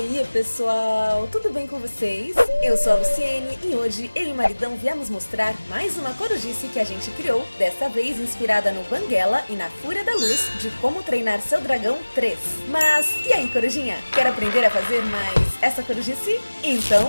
aí, pessoal? Tudo bem com vocês? Eu sou a Luciene e hoje eu e o maridão viemos mostrar mais uma corujice que a gente criou, dessa vez inspirada no Banguela e na Fúria da Luz de Como Treinar Seu Dragão 3. Mas e aí, corujinha? Quer aprender a fazer mais essa corujice?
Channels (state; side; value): inverted; both; correlation -1.00